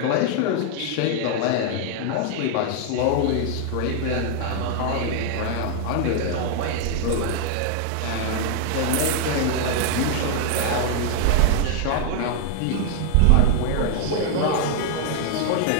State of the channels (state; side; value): different; both; correlation 0.00